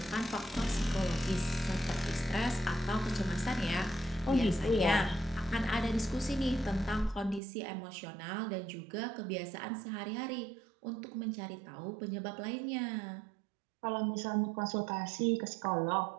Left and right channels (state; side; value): drops out; left; at 7.4 s